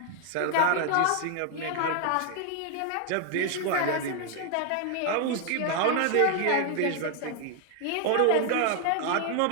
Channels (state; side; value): different; both; correlation 0.01